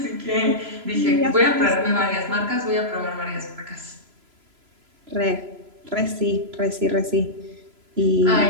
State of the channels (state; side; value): late; left; 3.0 ms